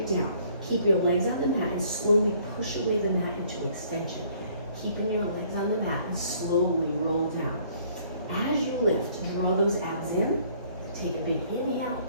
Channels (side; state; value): both; inverted; correlation -0.61